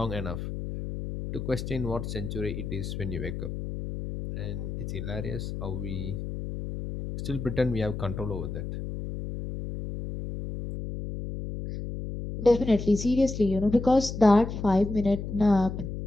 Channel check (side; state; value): left; noise; hum, 6 dB below the sound